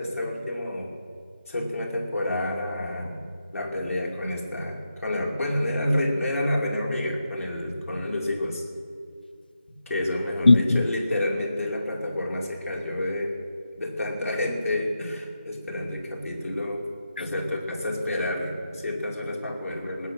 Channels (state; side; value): inverted; both; correlation -0.87